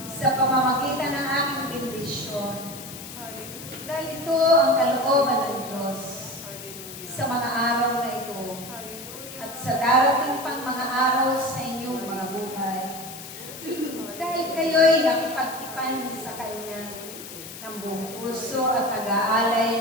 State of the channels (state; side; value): noise; left; hiss, 12 dB below the sound